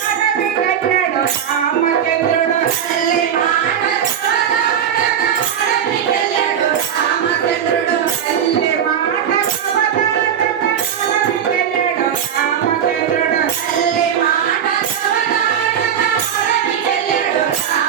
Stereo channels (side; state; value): left; quieter; 8.7 dB